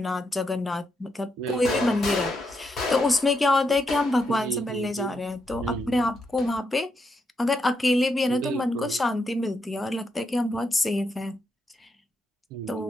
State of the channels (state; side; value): normal; both; correlation 0.81